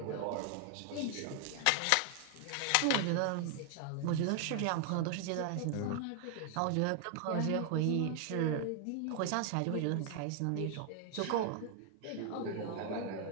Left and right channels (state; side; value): different; both; correlation 0.00